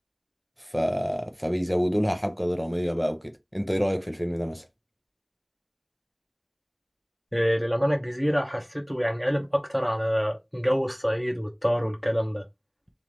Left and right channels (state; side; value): identical; both; correlation 1.00